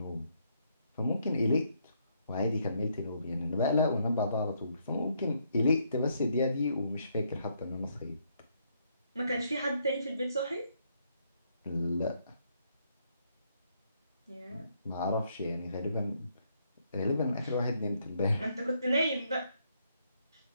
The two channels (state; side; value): inverted; both; correlation -0.74